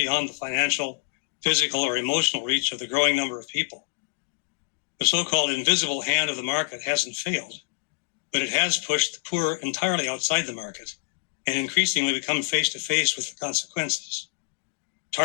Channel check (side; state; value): right; silent; 61 dB below the other